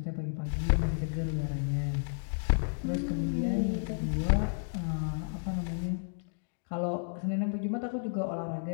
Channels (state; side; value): silent; right; digital silence